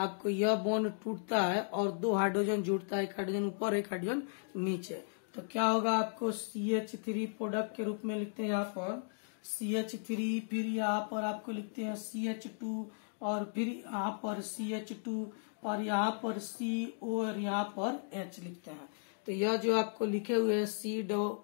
यह बॉन्ड टूटता है और 2 हाइड्रोजन जुड़ता है, एक हाइड्रोजन ऊपर एक हाइड्रोजन नीचे। तो क्या होगा, आपको CH3 प्रोडक्ट के रूप में लिखते हैं यहाँ पर CH3, फिर यहाँ पर आपको लिखते हैं CH2 और फिर यहाँ पर CH2 और यहाँ पर CO और यहाँ पर H लिखते हैं। तो यह जो आपको लिखे हुए है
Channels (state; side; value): silent; right; digital silence